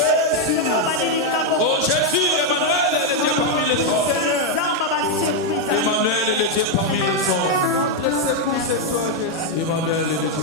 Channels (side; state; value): both; normal; correlation 0.01